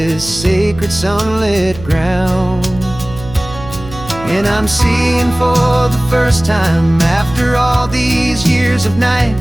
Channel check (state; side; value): noise; right; hum, 15 dB below the sound